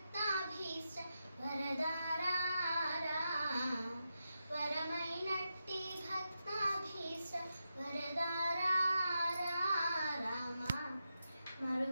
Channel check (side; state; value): both; inverted; correlation -0.88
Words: వరదారా వరమైనట్టి భక్తాభీష్ట వరదారా రామ